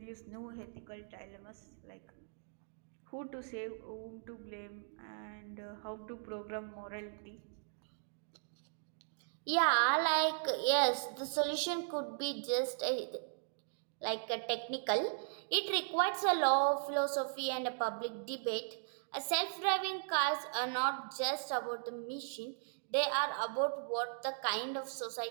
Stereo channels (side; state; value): left; silent; digital silence